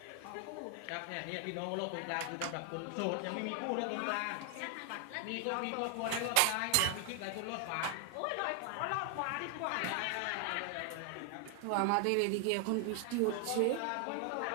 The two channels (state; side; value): different; both; correlation 0.00